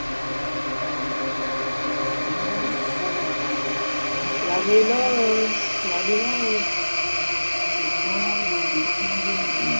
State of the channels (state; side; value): inverted; both; correlation -1.00